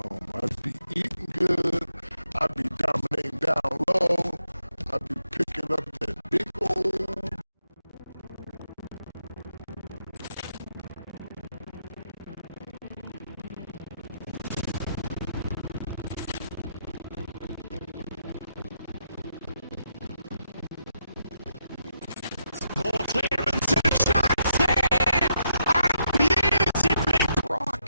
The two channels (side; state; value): both; inverted; correlation -0.80